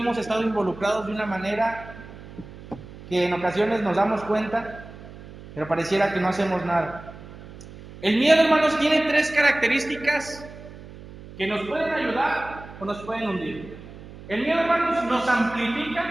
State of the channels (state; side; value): noise; right; hum, 16 dB below the sound